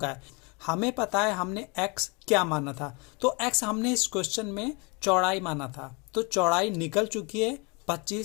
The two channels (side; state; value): right; quieter; 30.2 dB